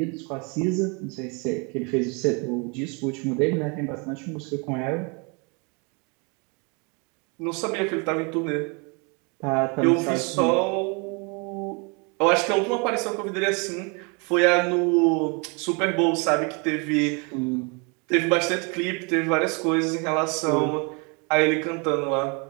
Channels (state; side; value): quieter; left; 32.4 dB